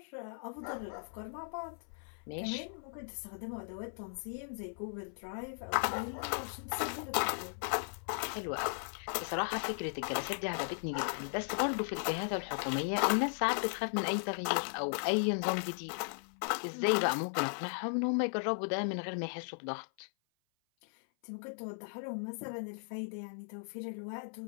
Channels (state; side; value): silent; right; 53 dB below the other